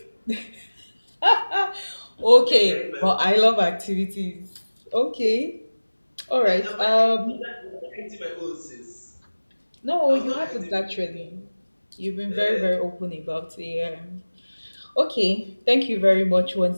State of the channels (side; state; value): both; inverted; correlation -1.00